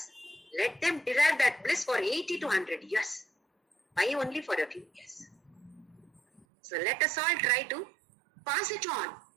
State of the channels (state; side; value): drops out; left; at 6.5 s